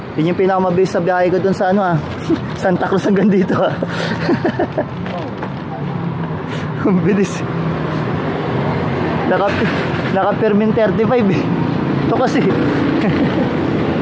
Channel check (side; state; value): both; identical; correlation 1.00